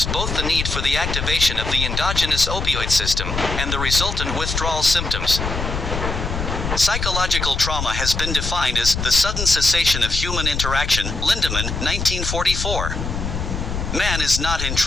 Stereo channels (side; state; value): left; noise; rumble, 3 dB below the sound